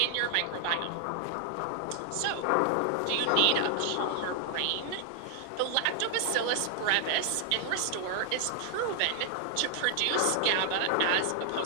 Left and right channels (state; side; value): different; both; correlation 0.00